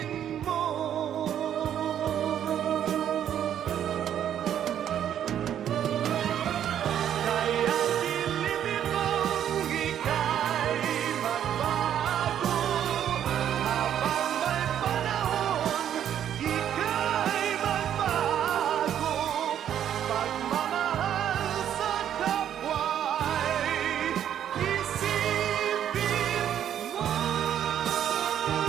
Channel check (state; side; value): quieter; left; 10.0 dB